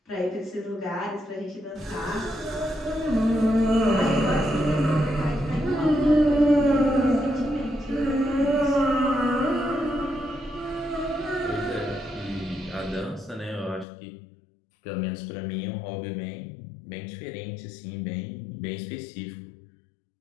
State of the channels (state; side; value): drops out; right; at 13.9 s